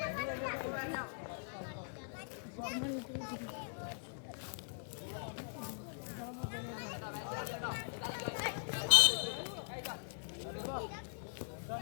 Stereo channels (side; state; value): right; silent; digital silence